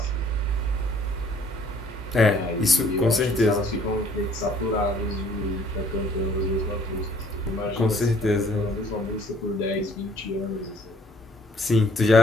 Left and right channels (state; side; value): normal; both; correlation 0.59